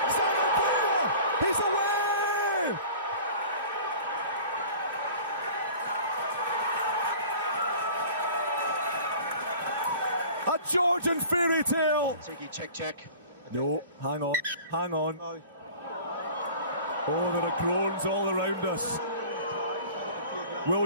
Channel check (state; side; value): inverted; both; correlation -0.44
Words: Zanandrea He's away! A Georgian fairy tale. Check. No, hang on. Oh, there are groans all around us.